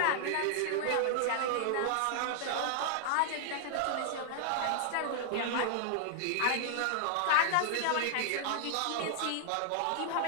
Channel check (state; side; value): different; both; correlation -0.01